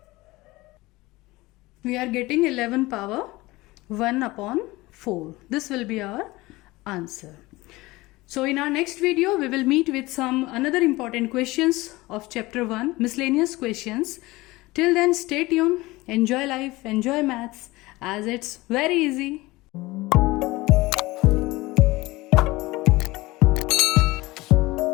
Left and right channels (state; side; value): quieter; right; 20.5 dB